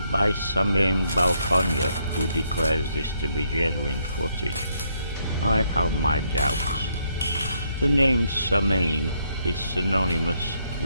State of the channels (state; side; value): inverted; both; correlation -0.74